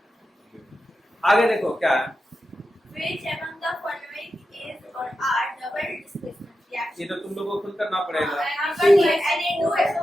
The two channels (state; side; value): normal; both; correlation 0.90